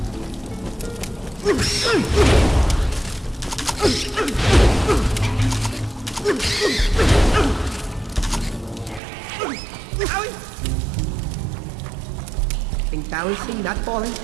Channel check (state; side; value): drops out; left; at 9.0 s